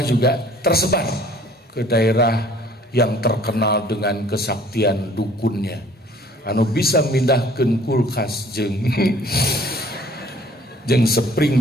juga tersebar ke daerah yang terkenal dengan kesaktian dukunnya, anu bisa mindahkeun kulkas jeung jeung spring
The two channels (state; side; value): normal; both; correlation 0.54